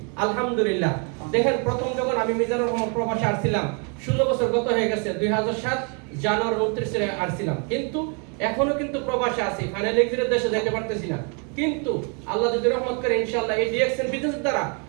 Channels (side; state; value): left; quieter; 37.0 dB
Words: আলহামদুলিল্লাহ। দেখেন, প্রথম যখন আমি মিজানুর রহমান প্রবাসে আসছিলাম, 16 বছর গত হয়ে গেছে। 2007 জানুয়ারি 29 আসছিলাম, কিন্তু এখনো কিন্তু প্রবাসে আছি। ফাইনাল এক্সিটের দেশে যেতে পারতেছি না। কিন্তু আল্লাহ যদি রহমত করে ইনশাআল্লাহ এই ডিএক্সএন বিজনেসের দ্বারা